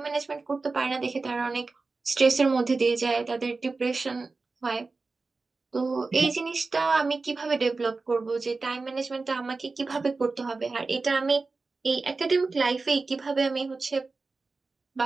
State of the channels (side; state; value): left; quieter; 3.9 dB